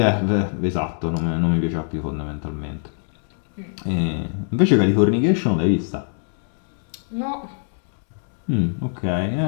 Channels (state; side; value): silent; right; digital silence